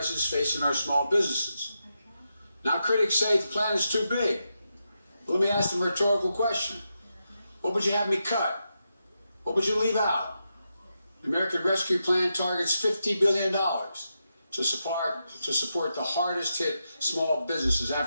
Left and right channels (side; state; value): both; inverted; correlation -0.86